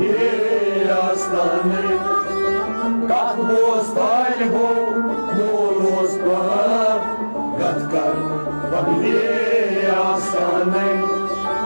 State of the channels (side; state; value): both; inverted; correlation -1.00